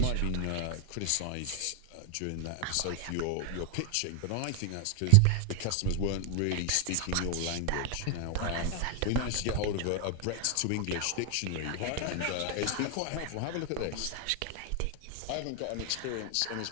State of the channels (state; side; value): different; both; correlation 0.00